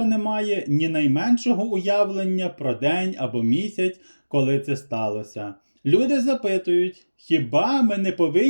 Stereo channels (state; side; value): inverted; both; correlation -1.00